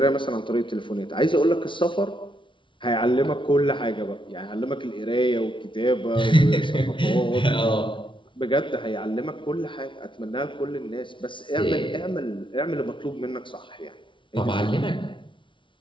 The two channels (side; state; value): right; late; 0.24 ms